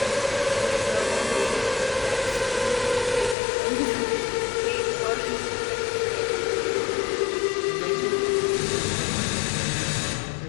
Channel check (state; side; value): drops out; right; at 3.4 s